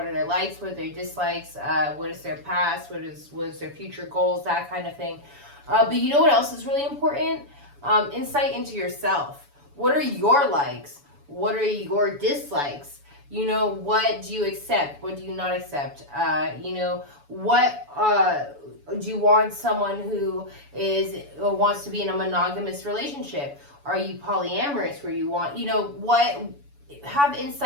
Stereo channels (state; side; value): late; left; 7.0 ms